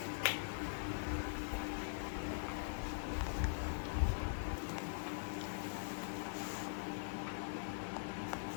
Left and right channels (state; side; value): silent; right; digital silence